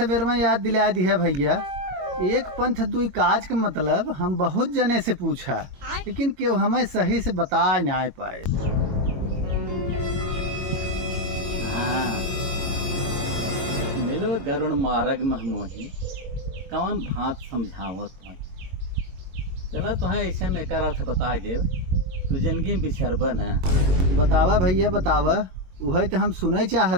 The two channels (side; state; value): left; late; 22 ms